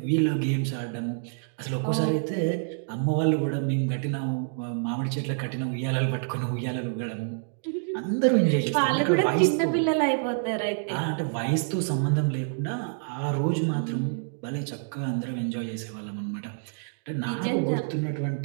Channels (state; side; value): silent; left; digital silence